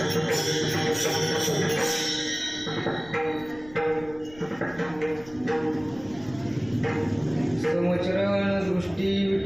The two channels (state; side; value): noise; left; rumble, 21 dB below the sound